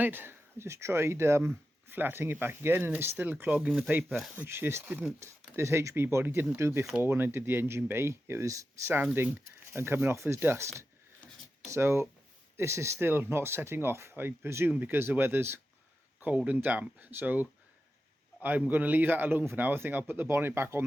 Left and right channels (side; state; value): both; normal; correlation 0.91